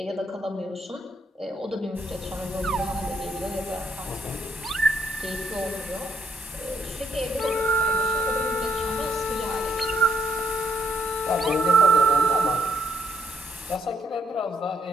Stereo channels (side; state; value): both; normal; correlation 0.73